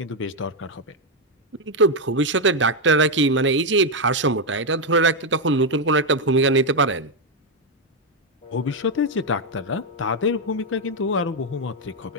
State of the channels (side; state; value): both; normal; correlation 0.02